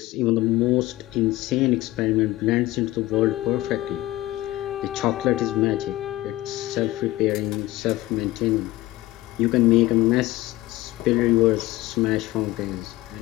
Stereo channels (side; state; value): right; quieter; 17.6 dB